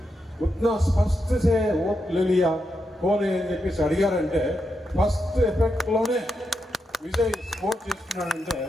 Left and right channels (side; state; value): both; normal; correlation 0.85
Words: उतना स्पष्ट से वोट ले लिया, कौन है అని చెప్పేసి అడిగారంటే ఫస్ట్ ఎఫెక్ట్లోనే విజయ్ స్కోర్ చేసుకున్నాడంటే